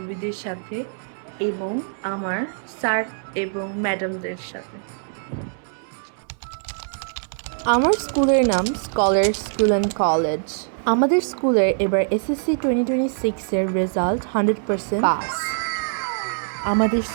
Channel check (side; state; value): left; silent; digital silence